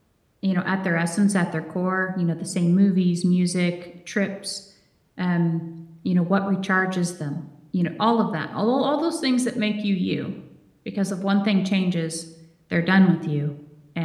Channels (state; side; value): identical; both; correlation 1.00